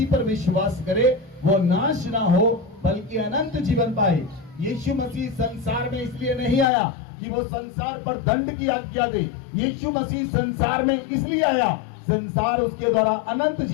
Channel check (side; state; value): right; drops out; at 6.7 s